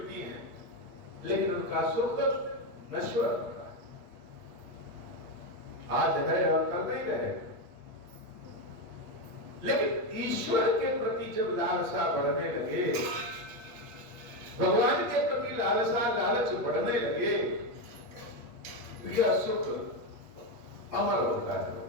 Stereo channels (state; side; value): late; left; 8.4 ms